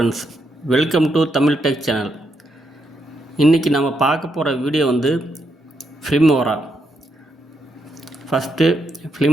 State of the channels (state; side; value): normal; both; correlation 0.79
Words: welcome to Tamil tech channel. இன்றைக்கி நம்ம பார்க்க போகிற வீடியோ வந்து ஃபிலிமோரா. ஃபஸ்ட்டு